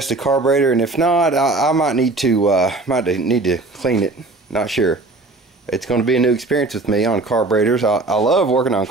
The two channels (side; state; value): left; quieter; 3.2 dB